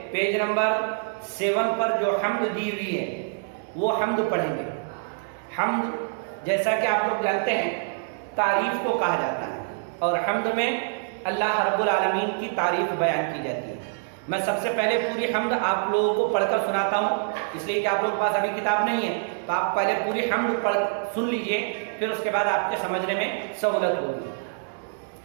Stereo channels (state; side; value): silent; left; digital silence